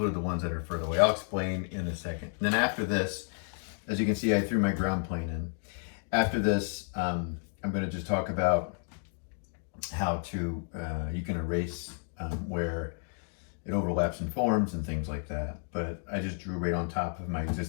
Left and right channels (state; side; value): silent; right; 57 dB below the other